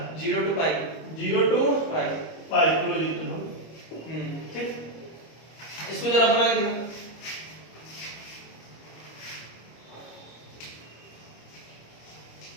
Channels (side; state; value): right; late; 25 ms